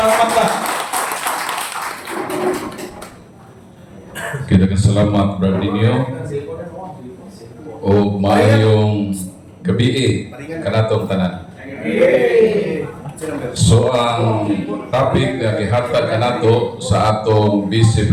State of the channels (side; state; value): both; identical; correlation 1.00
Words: Pagba. Kita salamat, Brad Dinyo. O maayong gabi kanatong tanan. So ang topic na gihatag kanato sa atong Vice